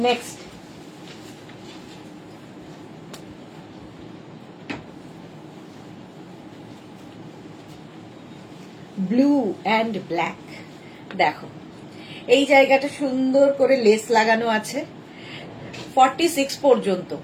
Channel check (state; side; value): identical; both; correlation 1.00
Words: Next blue and black. দেখো এই জায়গাটা সুন্দর করে লেস লাগানো আছে 46 পর্যন্ত।